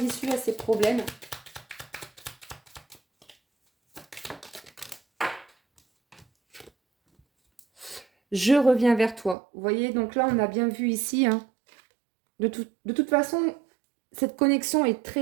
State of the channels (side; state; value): left; drops out; at 9.3 s